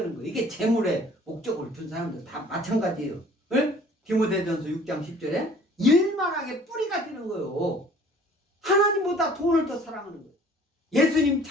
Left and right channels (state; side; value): normal; both; correlation 0.52